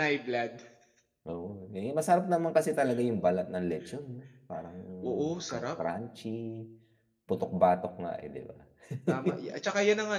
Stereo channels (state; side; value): identical; both; correlation 1.00